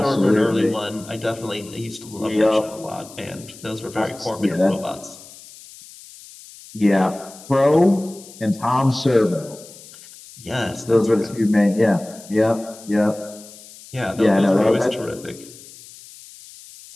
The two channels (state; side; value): noise; left; hiss, 19 dB below the sound